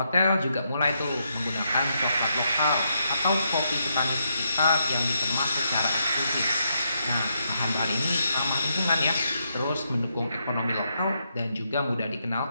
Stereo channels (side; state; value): both; inverted; correlation -0.80